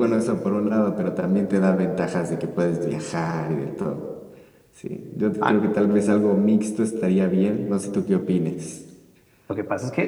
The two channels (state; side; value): identical; both; correlation 1.00